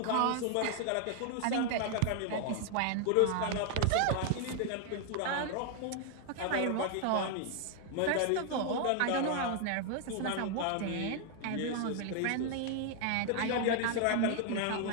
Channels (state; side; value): different; both; correlation 0.00